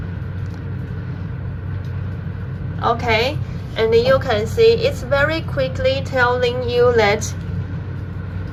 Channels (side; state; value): both; identical; correlation 1.00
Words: Okay, and you can see it's very quickly telling you that